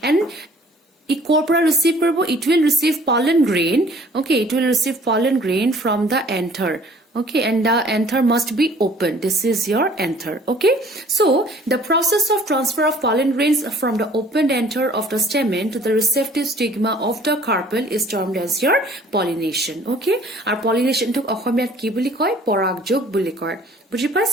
and corpora receive, it will receive pollen grain. Okay, it will receive pollen grain from the anther. Okay, and the anther must be open. This is your anther. Okay, so the process of transfer of pollen grains from the opened anther of the stamen to the receptive stigma of the carpel is termed as your pollination. Okay, our pollination to অসমীয়াত কি বুলি কয়? পৰাগযোগ বুলি কয়। বুজি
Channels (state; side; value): normal; both; correlation 0.54